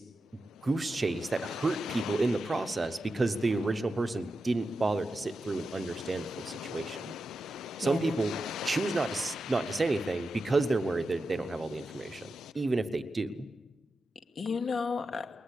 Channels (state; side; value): normal; both; correlation 0.89